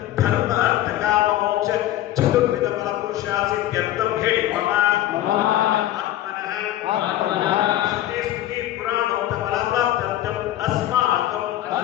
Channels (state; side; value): quieter; right; 13.7 dB